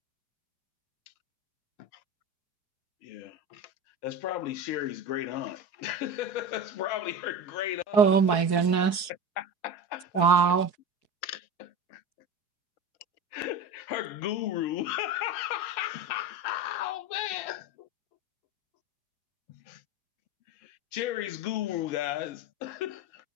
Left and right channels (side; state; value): right; late; 4.7 ms